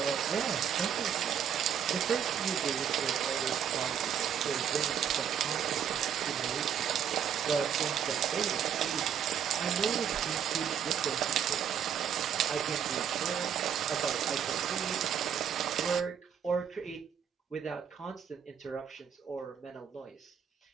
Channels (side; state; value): left; quieter; 8.4 dB